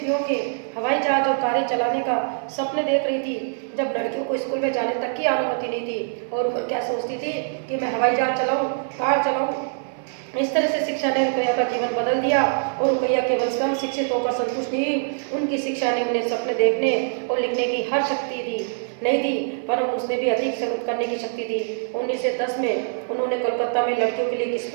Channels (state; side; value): silent; left; 57 dB below the other